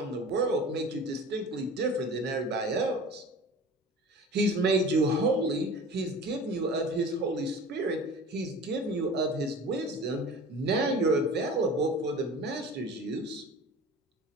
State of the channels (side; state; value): both; normal; correlation 0.39